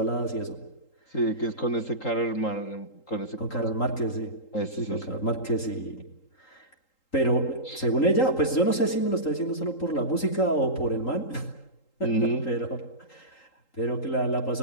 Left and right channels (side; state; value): right; late; 3.8 ms